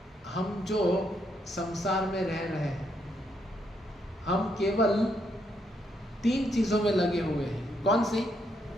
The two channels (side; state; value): both; normal; correlation 0.76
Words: हम जो संसार में रह रहे हैं, हम केवल 3 चीजों में लगे हुए हैं। कौन सी?